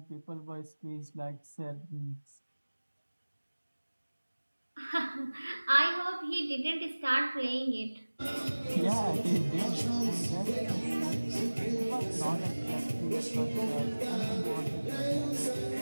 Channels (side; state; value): both; inverted; correlation -1.00